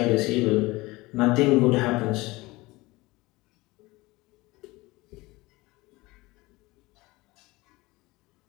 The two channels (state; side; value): quieter; right; 21.5 dB